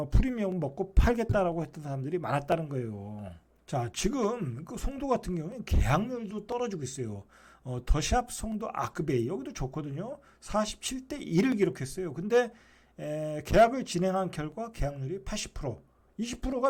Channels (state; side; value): identical; both; correlation 1.00